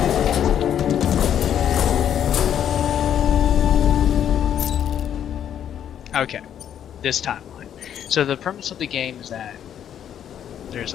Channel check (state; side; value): quieter; right; 9.6 dB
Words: Okay, this timeline. So the premise of the game is that there's a